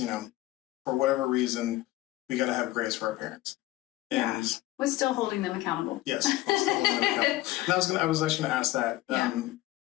for whatever reason, we gotta have grace for our parents. And yeah. We're still holding them accountable. Yes. We're still holding them accountable. And I was actually gonna ask that. Yeah.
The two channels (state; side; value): quieter; right; 17.1 dB